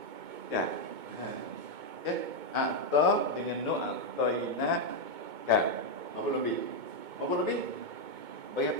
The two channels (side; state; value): left; late; 2.2 ms